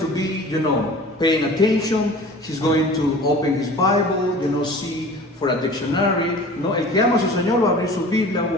be, paying attention. He's going to open his Bible, see for a dictionary. El que ama a su Señor va a abrir su Biblia, va a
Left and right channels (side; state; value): both; normal; correlation 0.42